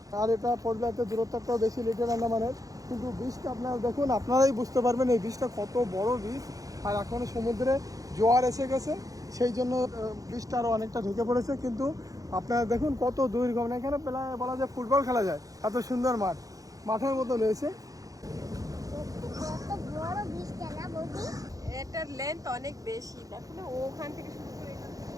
আর এটা পোর্টব্লেয়ারতে দূরত্বটাও বেশি লিটল আন্দামানের। কিন্তু বিচটা আপনারা দেখুন, আপনারাই বুঝতে পারবেন এই বিচটা কত বড় বিচ। আর এখন সমুদ্রে জোয়ার এসে গেছে, সেই জন্য বীজটা আরও অনেকটা ঢেকে পড়েছে। কিন্তু আপনারা দেখুন কত দূর গমন, এখানে প্রায় বলা যায় ফুটবল খেলা যায়, এত সুন্দর মাঠ, মাঠের মতো রয়েছে। কত বড় বীজটা না বৌদি? এটার লেন্থ অনেক বেশি, দেখো না, ওখান থেকে শুরু করে এখান থেকে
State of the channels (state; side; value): late; left; 0.17 ms